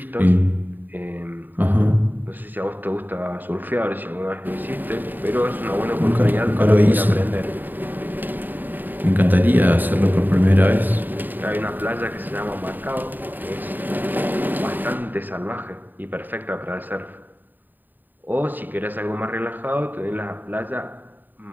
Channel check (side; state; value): left; late; 0.089 ms